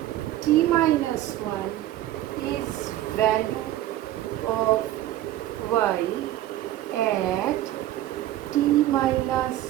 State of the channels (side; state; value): left; quieter; 14.0 dB